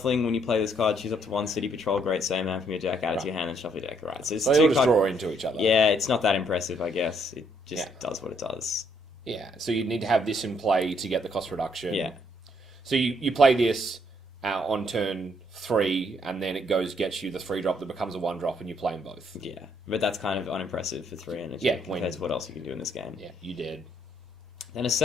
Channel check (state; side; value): normal; both; correlation 0.70